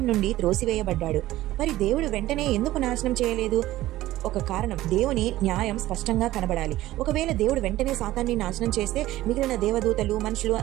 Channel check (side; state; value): left; quieter; 15.8 dB